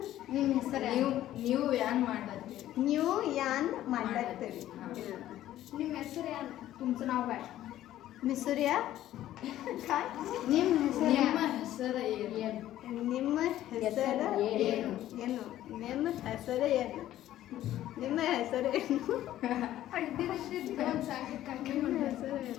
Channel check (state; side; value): quieter; right; 13.3 dB